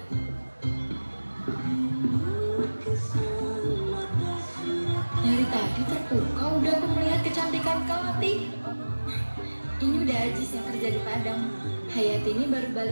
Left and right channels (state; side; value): inverted; both; correlation -1.00